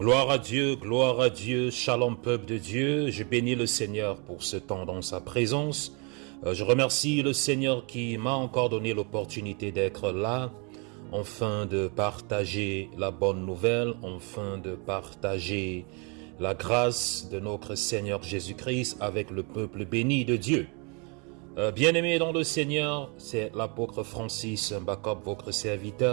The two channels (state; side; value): quieter; left; 33.4 dB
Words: à Dieu, shalom peuple de Dieu. Je bénis le Seigneur pour ce temps dans sa présence. Je remercie le Seigneur qui m'a encore donné l'opportunité d'être là, afin de partager la bonne nouvelle, afin de partager la grâce de notre Seigneur Jésus-Christ avec le peuple béni de Dieu. Bien-aimé dans le Seigneur, c'est l'apôtre Francis Mbakop, votre